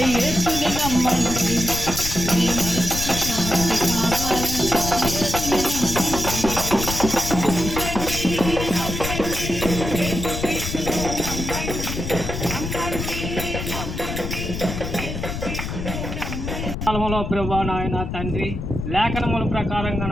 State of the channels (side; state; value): left; noise; rumble, 5 dB below the sound